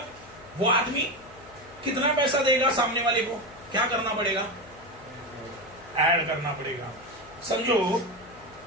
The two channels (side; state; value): left; noise; hum, 22 dB below the sound